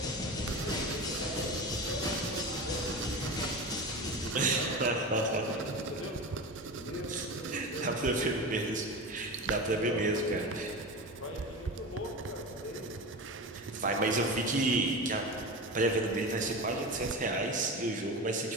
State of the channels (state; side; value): normal; both; correlation 0.26